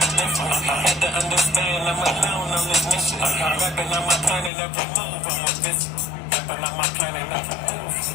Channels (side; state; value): right; drops out; at 4.5 s